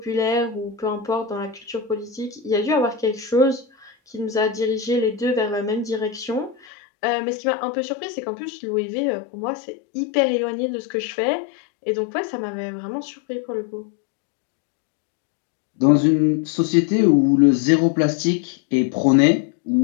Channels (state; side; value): drops out; right; at 6.6 s